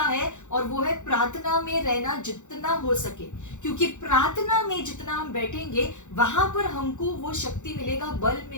है, और वो है प्रार्थना में रहना जितना हो सके। क्योंकि प्रार्थना में जितना हम बैठेंगे, वहां पर हमको वो शक्ति मिलेगा, बल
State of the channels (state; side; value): late; right; 0.85 ms